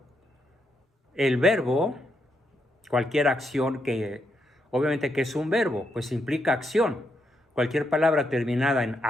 El verbo, cualquier acción que, obviamente que es un verbo, pues implica acción. Cualquier palabra terminada en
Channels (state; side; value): normal; both; correlation 0.80